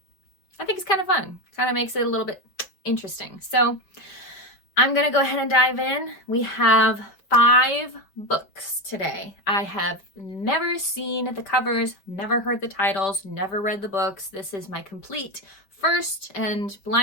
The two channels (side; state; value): right; late; 5.4 ms